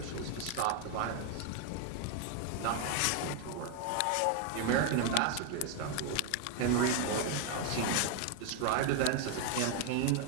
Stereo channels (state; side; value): different; both; correlation 0.01